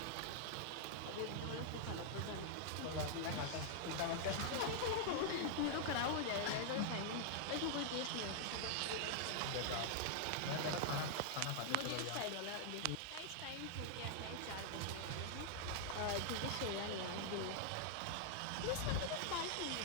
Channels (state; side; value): different; both; correlation -0.01